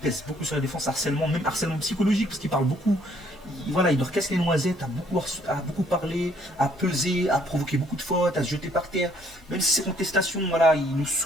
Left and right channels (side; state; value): both; normal; correlation 0.64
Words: pèse beaucoup sur la défense, même harcèlement psychologique parce qu'il parle beaucoup. Voilà, il leur casse les noisettes, à beaucoup parler, à peser, à provoquer beaucoup de fautes, à se jeter par terre. Même si ces contestations, voilà, il nous